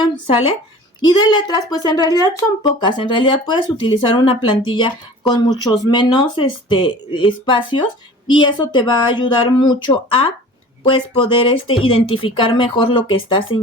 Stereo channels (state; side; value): normal; both; correlation 0.43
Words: ¿sale? Y de letras, pues en realidad son pocas. En realidad puedes utilizar una plantilla con muchos menos espacios, y eso te va a ayudar mucho a pues poder identificar mejor lo que está